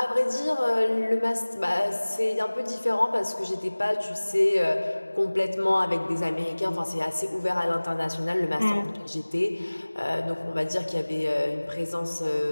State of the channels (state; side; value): inverted; both; correlation -1.00